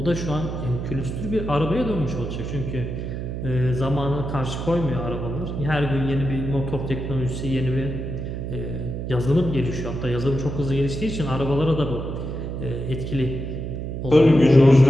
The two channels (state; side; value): noise; right; hum, 5 dB below the sound